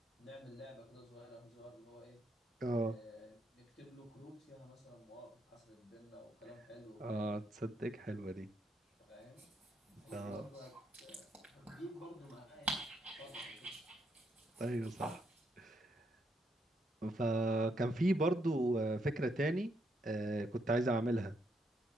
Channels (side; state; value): both; normal; correlation 0.76